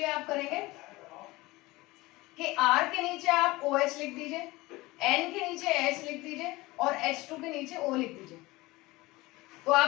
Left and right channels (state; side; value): quieter; right; 20.8 dB